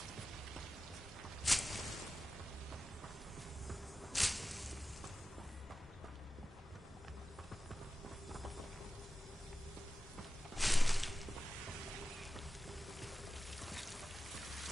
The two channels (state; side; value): normal; both; correlation 0.94